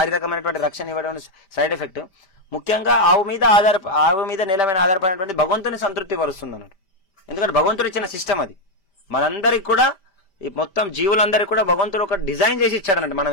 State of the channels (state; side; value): late; right; 5.1 ms